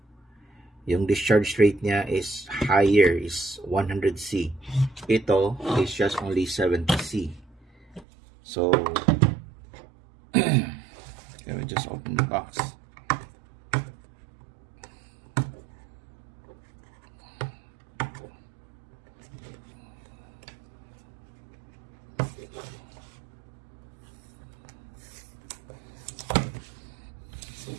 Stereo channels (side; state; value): left; drops out; at 8.1 s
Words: Yung discharge rate niya is higher, is 100C. Ito is just only 70C. So let me just open the box.